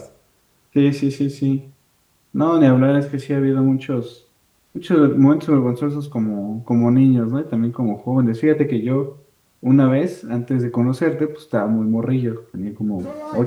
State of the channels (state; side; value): identical; both; correlation 1.00